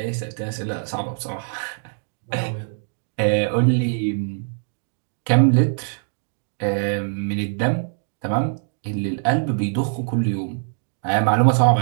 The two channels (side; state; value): left; silent; digital silence